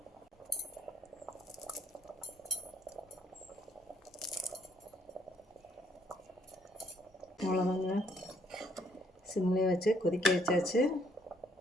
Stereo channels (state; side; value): normal; both; correlation 0.67